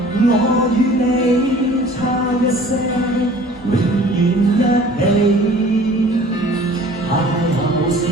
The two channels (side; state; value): both; normal; correlation 0.48